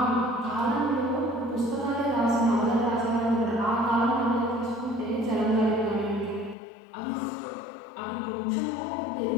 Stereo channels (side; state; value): right; drops out; at 6.6 s